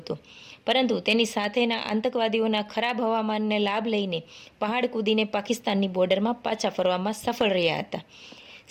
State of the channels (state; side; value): identical; both; correlation 1.00